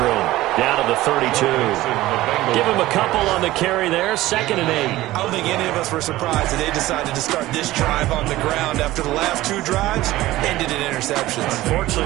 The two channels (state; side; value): quieter; left; 16.7 dB